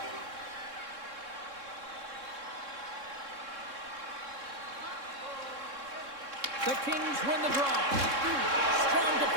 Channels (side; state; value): left; late; 3.6 ms